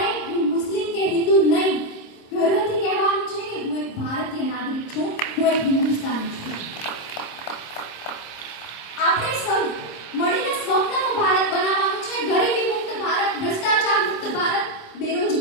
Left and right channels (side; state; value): right; late; 26 ms